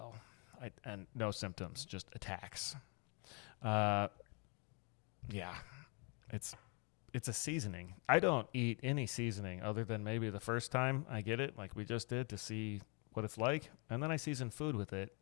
And no symptoms, just attacks. Yeah, it's a seasoning. I don't eat any seasoning other than maybe the first time I get it, like we just did, to see what it's like, and then I season food with it,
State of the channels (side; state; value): right; quieter; 34.9 dB